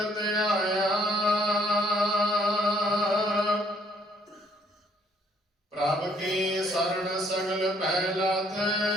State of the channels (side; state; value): both; normal; correlation 0.64